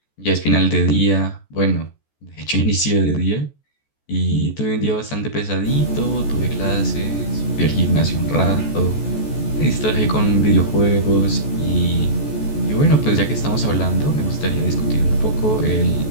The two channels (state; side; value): late; right; 14 ms